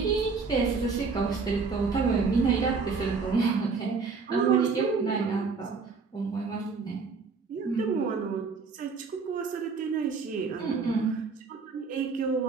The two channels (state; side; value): quieter; left; 4.8 dB